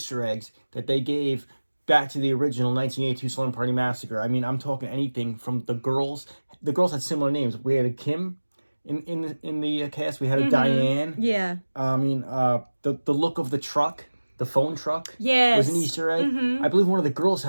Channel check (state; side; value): inverted; both; correlation -1.00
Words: eggs that they gave back to the original 1982 Slumber Party Massacre. I mean, I'm talking anything from the girls. The girls had similar names. We had a Kim in the cast. We had a Diane. Yeah. I mean, the look of the truck, the phone truck, Yes. was an Easter egg. I believe one of the girls